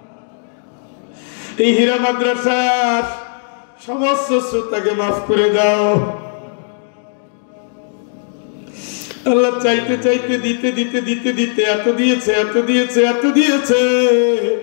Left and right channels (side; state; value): right; silent; digital silence